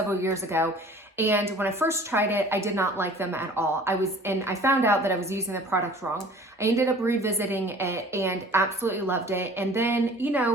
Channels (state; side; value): normal; both; correlation 0.47